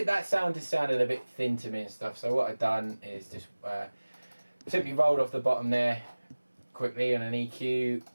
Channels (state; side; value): inverted; both; correlation -1.00